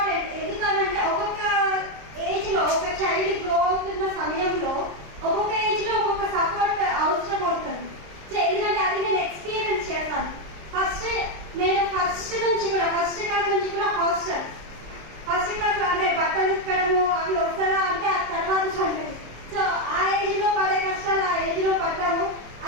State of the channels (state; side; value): late; left; 26 ms